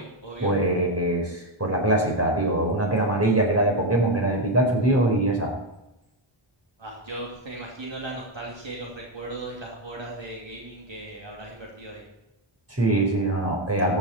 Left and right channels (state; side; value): normal; both; correlation 0.07